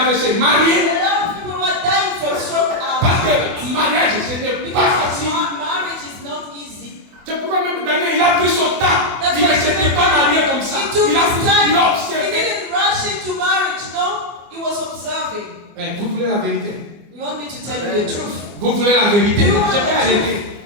le WC. Mariés. A lot of people were dying from stroke. Parce que mariage, ce n'est pas Because facile. marriage is not easy. C'est pourquoi même Daniel, il a pris son temps. That's Il why ne s'était pas marié comme ça. He took Il a his time. il a He observé. didn't rush into marriage, no. He was observing. Vous voulez la vérité? You want me to tell you the truth? Vous voulez la vérité? You want Je vais the arrêter.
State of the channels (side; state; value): left; late; 24 ms